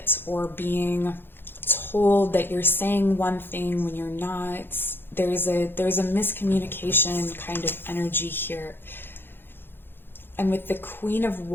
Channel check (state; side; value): late; right; 0.10 ms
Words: or being told that you're saying one thing when you're not. There's a miscommunication kind of energy here. And with the Queen of